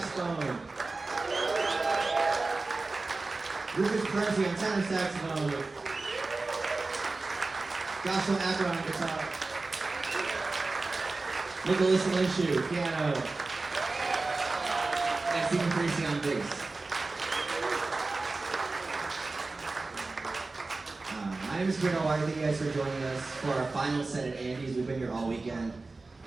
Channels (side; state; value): left; quieter; 3.5 dB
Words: Rich Hebron on tenor saxophone. Joshua Hebron on guitar. Nicholas Linshu, piano. And Stephen Parisi on bass. My name is Kabir Dalawari. Thank you guys for joining us for our final set at Andy's. We've been here all weekend,